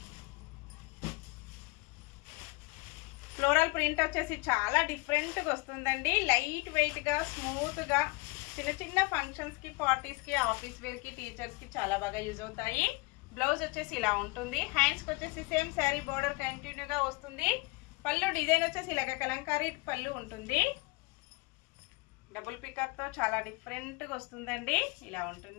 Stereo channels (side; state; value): right; quieter; 25.2 dB